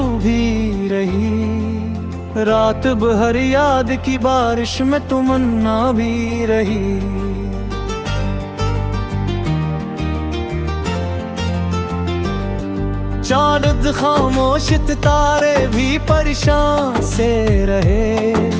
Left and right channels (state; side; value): identical; both; correlation 1.00